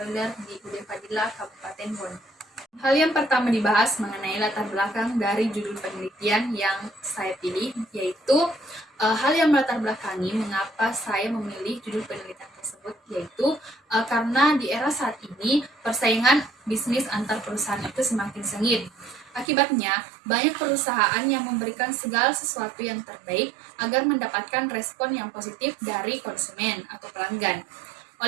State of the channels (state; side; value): drops out; left; at 19.5 s